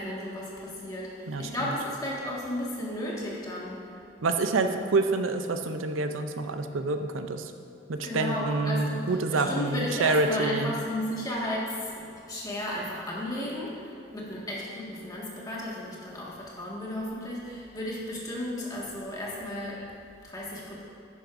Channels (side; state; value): both; normal; correlation 0.22